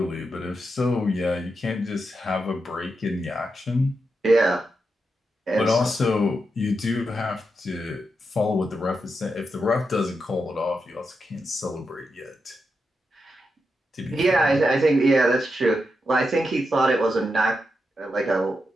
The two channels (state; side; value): normal; both; correlation 0.85